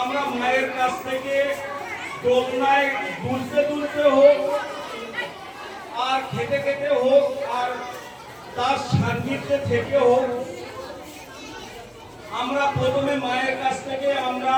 আমরা মায়ের কাছ থেকে দোলনায় দুলতে দুলতে হোক আর খেতে খেতে হোক আর তার সান্নিধ্যে থেকে হোক, আমরা প্রথমে মায়ের কাছ থেকে আমরা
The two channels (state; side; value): identical; both; correlation 1.00